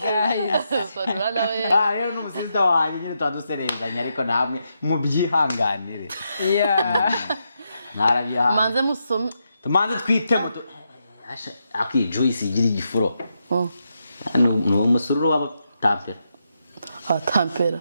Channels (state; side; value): inverted; both; correlation -0.83